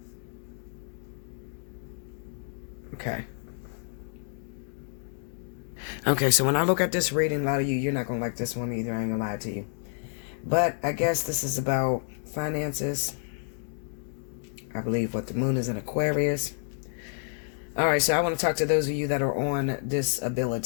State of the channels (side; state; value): right; silent; digital silence